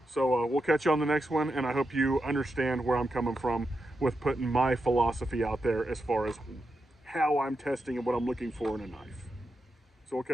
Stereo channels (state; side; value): normal; both; correlation 0.87